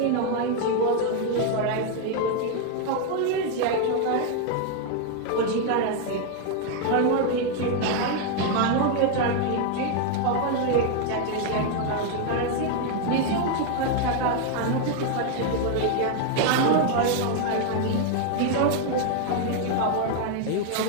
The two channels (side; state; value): both; different; correlation 0.01